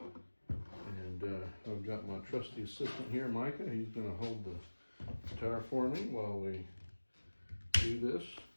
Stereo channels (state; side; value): inverted; both; correlation -1.00